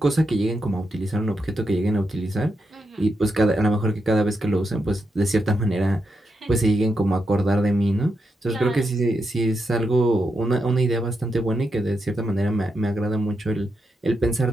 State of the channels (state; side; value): normal; both; correlation 0.84